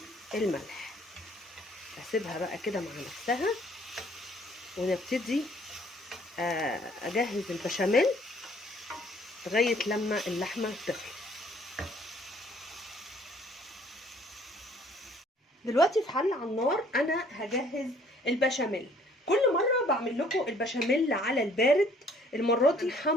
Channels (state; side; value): normal; both; correlation 0.60